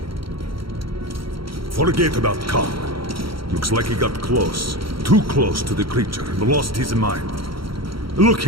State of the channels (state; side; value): late; left; 0.74 ms